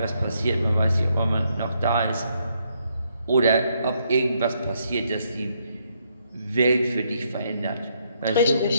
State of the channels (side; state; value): both; inverted; correlation -0.74